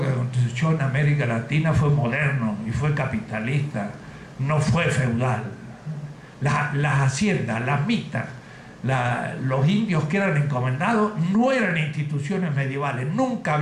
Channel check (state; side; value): identical; both; correlation 1.00